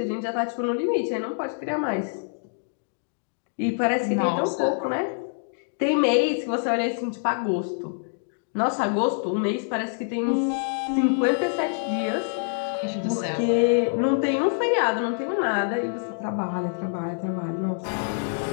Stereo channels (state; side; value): silent; right; digital silence